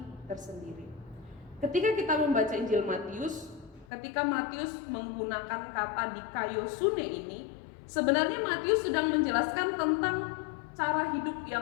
tersendiri. Ketika kita membaca Injil Matius, ketika Matius menggunakan kata dikaiosune ini, sebenarnya Matius sedang menjelaskan tentang cara hidup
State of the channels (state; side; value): drops out; right; at 3.9 s